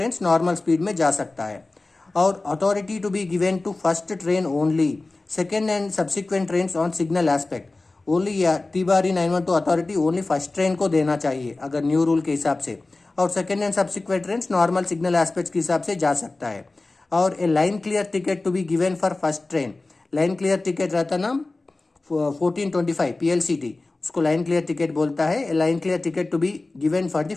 नॉर्मल स्पीड में जा सकता है। और authority to be given to first train only, second and subsequent trains on signal aspect only. TD 912 authority only first train को देना चाहिए अगर न्यू रूल के हिसाब से, और second and subsequent trains normal signal aspects के हिसाब से जा सकता है। और a line clear ticket to be given for first train, line clear ticket रहता ना 1425 PLCT, उसको लाइन क्लियर टिकट बोलता है। A line clear ticket to be given for the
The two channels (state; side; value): quieter; right; 3.2 dB